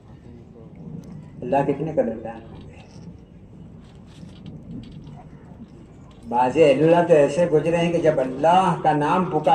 اللہ کتنے قدردان ہوں گے. بعض اللہ تو ایسے گزرے ہیں کہ جب اللہ کا نام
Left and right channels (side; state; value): both; identical; correlation 1.00